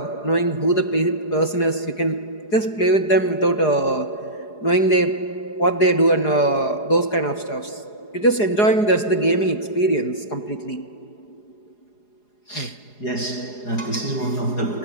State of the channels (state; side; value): late; right; 4.8 ms